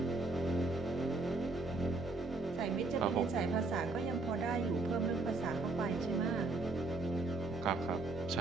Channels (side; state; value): left; quieter; 3.3 dB